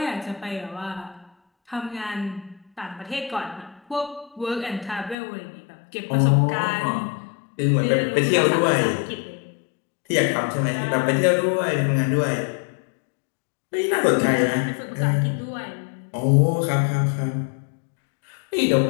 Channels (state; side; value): drops out; right; at 5.2 s